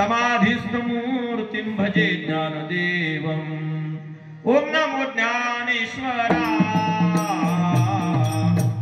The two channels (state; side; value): identical; both; correlation 1.00